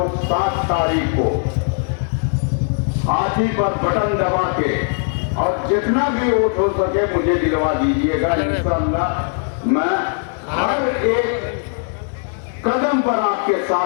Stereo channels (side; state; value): right; silent; 60 dB below the other